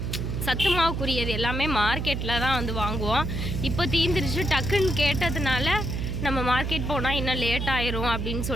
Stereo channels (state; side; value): noise; right; hum, 2 dB below the sound